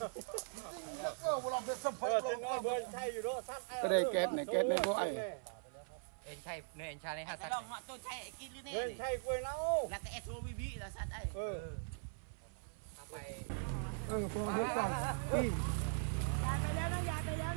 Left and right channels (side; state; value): left; silent; 51 dB below the other